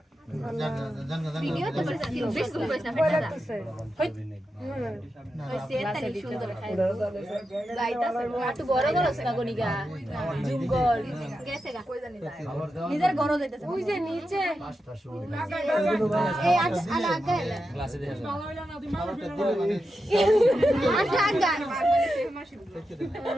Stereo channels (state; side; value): normal; both; correlation 0.89